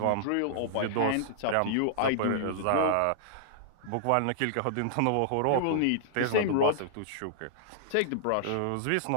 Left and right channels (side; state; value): both; different; correlation -0.01